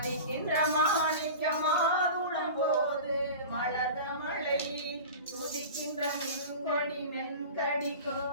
மாணிக்கமாதுளம் போது மலர்ந்த மழை துதிக்கின்ற மென்கொடி மென்கடி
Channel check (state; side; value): inverted; both; correlation -0.34